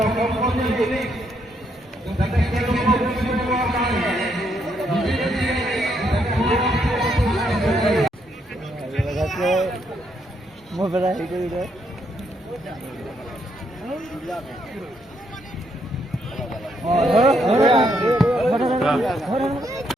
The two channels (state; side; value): normal; both; correlation 0.75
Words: Mau berapa itu udah?